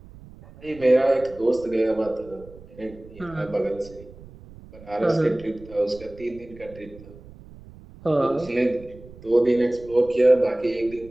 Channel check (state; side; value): noise; right; rumble, 20 dB below the sound